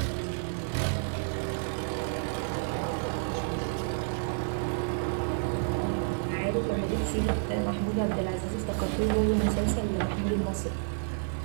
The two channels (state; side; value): silent; left; digital silence